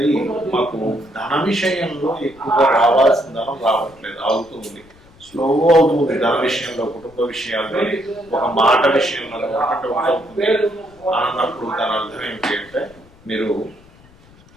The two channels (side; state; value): left; noise; rumble, 27 dB below the sound